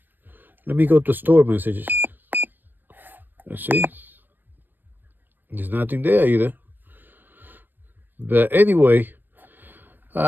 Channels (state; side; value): late; left; 0.092 ms